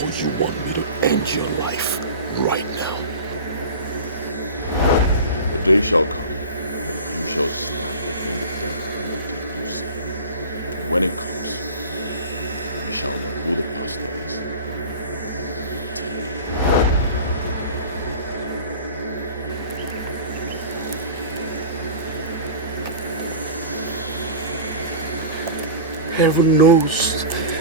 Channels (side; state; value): both; inverted; correlation -0.35